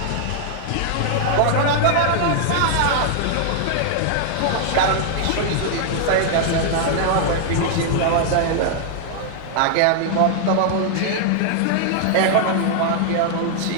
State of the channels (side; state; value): both; different; correlation -0.01